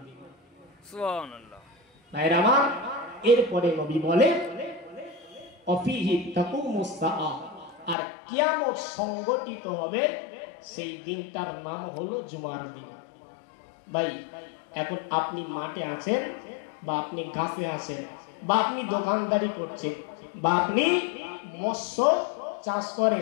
দিন। সুবহানাল্লাহ। ভাইরা আমার, এরপরে নবী বলেন অফিহি তাকুমুস সাআ, আর কিয়ামত সংগঠিত হবে সেই দিনটার নাম হলো জুমার দিন। ভাই এখন আপনি মাঠে আছেন বা আপনি গাছে আছেন বা আপনি দোকানদারি করছেন বা আপনি মৎস্য চাষ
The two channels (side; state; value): right; drops out; at 8.0 s